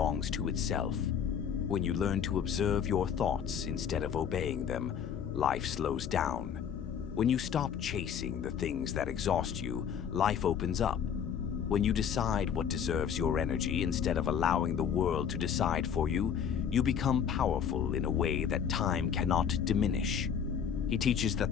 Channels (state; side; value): quieter; right; 7.9 dB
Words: to itself. When you learn to observe your thoughts instead of obeying them, life slows down. When you stop chasing the things that exhaust you, life opens up. When you decide what deserves your energy instead of allowing the world to decide for you, you become powerful in a way that time cannot diminish. He teaches